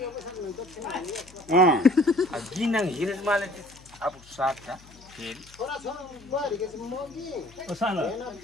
गिनङ हिरेसमाले अब साथ छ फेरि सानो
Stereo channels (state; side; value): noise; left; hum, 23 dB below the sound